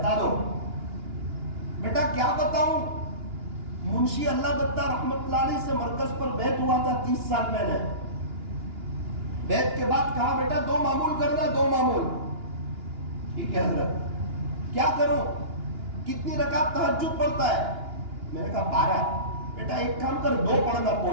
دو. بیٹا کیا بتاؤں، منشی اللہ دتا رحمت اللہ علیہ سے مرکز پر بیعت ہوا تھا 30 سال پہلے. بیعت کے بعد کہا بیٹا 2 معمول کرنا، 2 معمول. ٹھیک ہے حضرت. کیا کروں، کتنی رکعت تہجد پڑھتا ہے؟ میں نے کہا 12. بیٹا ایک کام کر، 2 پڑھنا،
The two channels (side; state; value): left; late; 2.9 ms